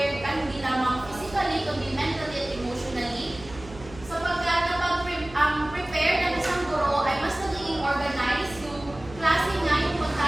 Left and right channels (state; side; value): noise; right; hum, 17 dB below the sound